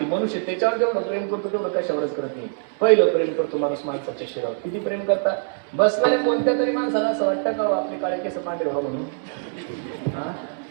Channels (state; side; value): silent; left; 63 dB below the other